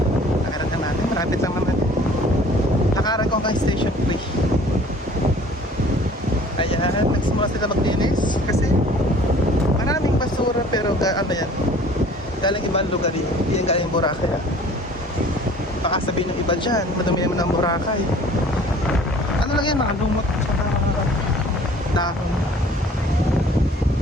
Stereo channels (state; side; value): normal; both; correlation 0.51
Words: Malapit lang naman. Nakaran ko hanggang Station 3. Ayan, nagsimula sila maglinis kasi maraming basura, pero ano yan, galing ibang lugar yun, hindi yan galing Boracay. Baka sabihin ng iba dyan, madumi naman ang Boracay. Ano lang yan, mga lumot at mga dahon.